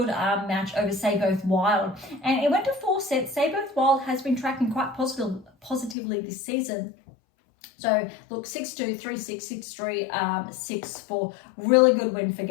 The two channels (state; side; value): drops out; right; at 6.0 s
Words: match over Seyboth Wild. And it went to 4 sets. Seyboth Wild has been tracking quite positively this season. So look, 6-2, 3-6, 6-3, 6-4, really good win for